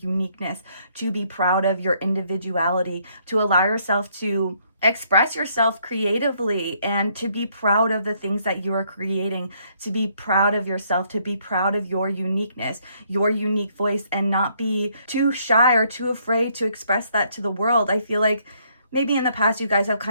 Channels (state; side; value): inverted; both; correlation -0.69